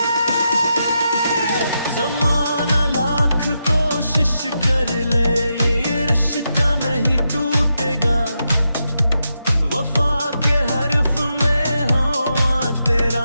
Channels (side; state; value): both; inverted; correlation -0.85